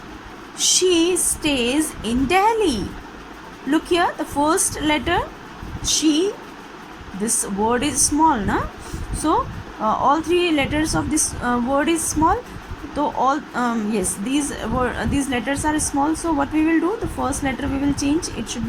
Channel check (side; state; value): both; identical; correlation 1.00